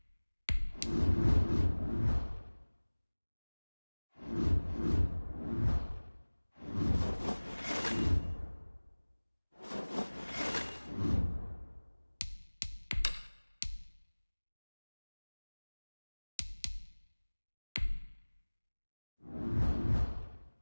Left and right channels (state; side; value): inverted; both; correlation -1.00